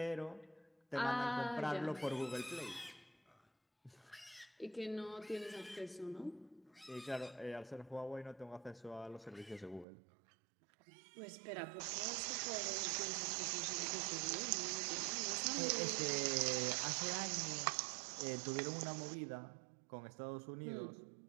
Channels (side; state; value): left; drops out; at 9.9 s